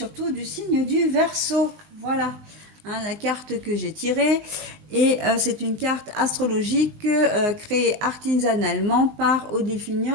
du signe du Verseau. Voilà, la carte que j'ai tirée et c'est une carte astrologique créée artisanalement par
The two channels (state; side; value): late; left; 20 ms